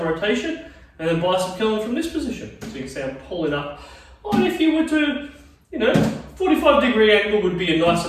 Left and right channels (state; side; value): identical; both; correlation 1.00